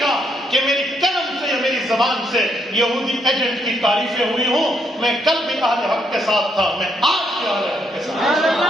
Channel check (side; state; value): both; normal; correlation 0.74